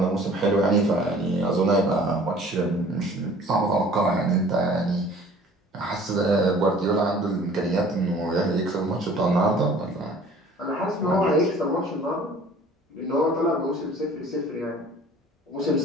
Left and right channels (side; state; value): both; normal; correlation 0.50